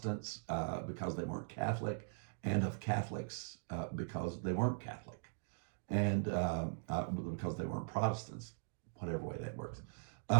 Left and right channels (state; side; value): silent; left; digital silence